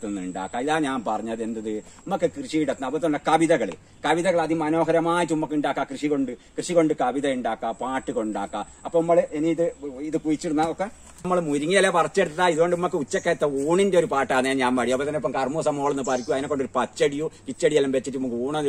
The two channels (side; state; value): both; identical; correlation 1.00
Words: നിന്ന് ഉണ്ടാക്കാം. ഇതാ ഞാൻ പറഞ്ഞത് എന്തത് നമുക്ക് കൃഷിയിടത്തിന്. അതുപോലെ തന്നെ കവിതകൾ അതിമനോഹരമായിട്ട് നമുക്ക് ഉണ്ടാക്കാം. കൃഷി കൊണ്ട് കവിത ഉണ്ടാക്കാം, പാട്ട് കൊണ്ടാക്കാം. അപ്പൊ നമ്മൾ ഇനി ഇത് കുഴിച്ചിടുന്ന ഒക്കെ നമ്മൾ മുരിങ്ങയില പറിച്ചെടുത്താൽ ഇതുകൊണ്ട് നമുക്ക് ഉച്ചക്കത്തെ ഊണിന്റെ ഒരു പാട്ടാണ് ഞാൻ പാടി. അപ്പൊ തന്നെ ഇപ്പം കർമ്മൂസ മോളെന്ന് പറിക്കും, അതിനെ കൊണ്ട് ഒരു പച്ചടിയോ കിച്ചടിയെല്ലാം വെച്ചിട്ട് നമുക്ക്